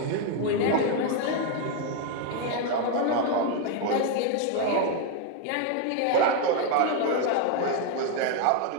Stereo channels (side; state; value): both; different; correlation 0.01